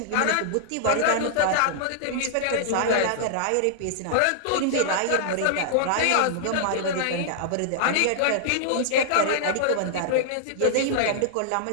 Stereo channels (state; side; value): different; both; correlation -0.01